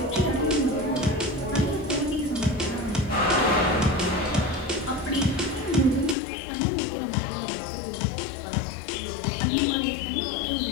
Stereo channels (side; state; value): right; drops out; at 6.2 s